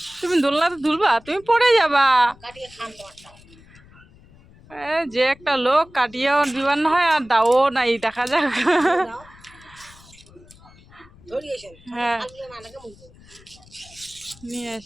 তুমি দোলনাতে ঝুলবা, তুমি পড়ে যাবা। কাটিয়ে খান তোমারটা যে একটা লোক কাটিয়েও দিবার না হয় আর দাও নাই, দেখা যাক। ধরিয়েছেন হ্যাঁ নানাকে মুখ নিয়ে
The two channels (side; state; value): left; noise; rumble, 25 dB below the sound